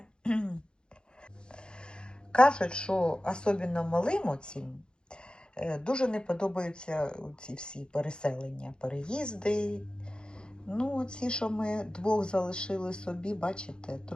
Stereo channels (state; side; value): late; right; 0.049 ms